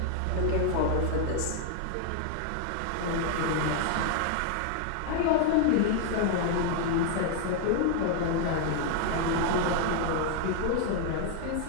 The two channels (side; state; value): both; different; correlation 0.00